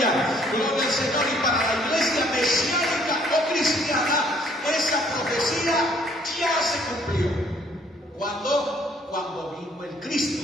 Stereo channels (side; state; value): both; normal; correlation 0.62